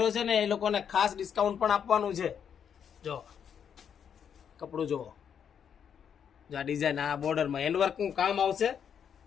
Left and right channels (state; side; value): quieter; right; 7.9 dB